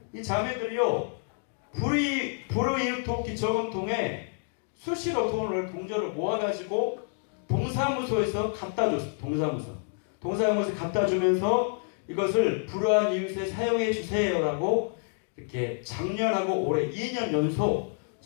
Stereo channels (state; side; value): silent; right; 56 dB below the other